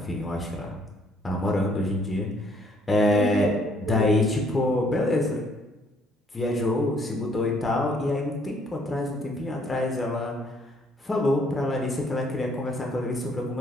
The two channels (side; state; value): both; normal; correlation 0.65